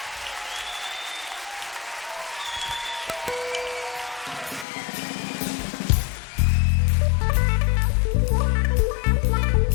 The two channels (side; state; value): right; drops out; at 4.7 s